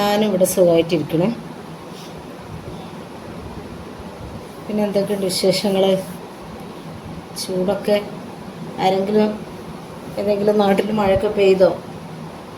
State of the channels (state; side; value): identical; both; correlation 1.00